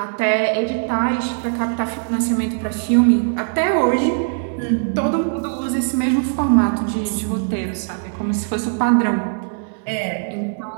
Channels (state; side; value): silent; left; 66 dB below the other